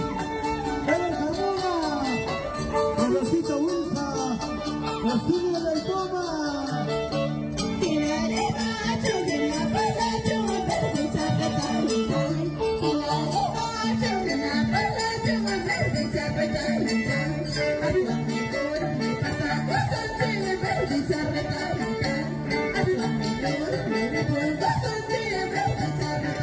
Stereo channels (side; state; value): both; identical; correlation 1.00